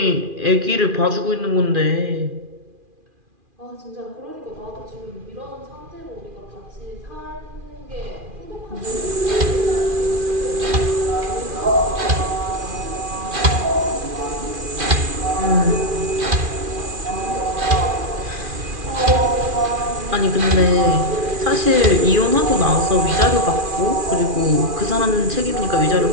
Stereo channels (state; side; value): late; left; 2.4 ms